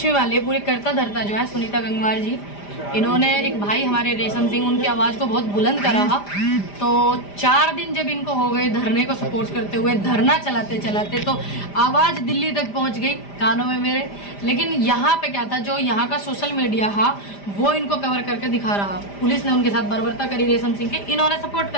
भी मान लीजिए, पूरे करता धरता जो है सुनीता गंगवार जी, इन्होंने एक भाई हमारे रेशम सिंह, उनकी आवाज़ को बहुत बुलंद करा। तो 4 दिन जब इनको हो गए धरने को सपोर्ट करते हुए, धरना चलाते चलाते, तो आवाज़ दिल्ली तक पहुंच गई कानों में मेरे। लेकिन यहाँ पे क्या था, जो यहाँ का सोशल मीडिया था वो इनको कवर करके दिखा रहा। पुलिस ने उनके साथ बर्बरता करी रेशम सिंह के, इन्होंने सपोर्ट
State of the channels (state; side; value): late; right; 5.0 ms